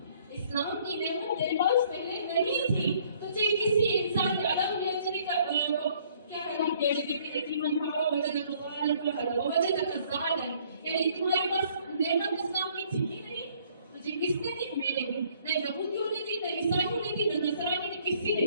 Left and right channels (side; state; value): both; inverted; correlation -0.61